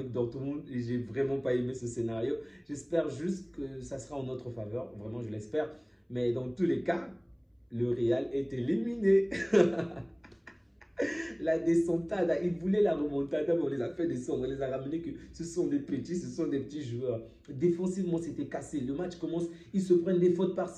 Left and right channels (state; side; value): identical; both; correlation 1.00